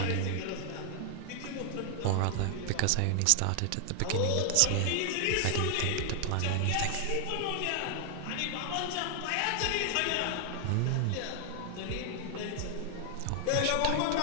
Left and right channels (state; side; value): different; both; correlation 0.00